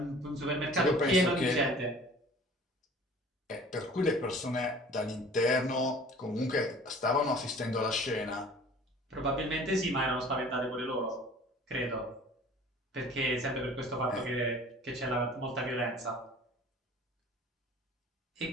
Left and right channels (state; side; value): normal; both; correlation 0.47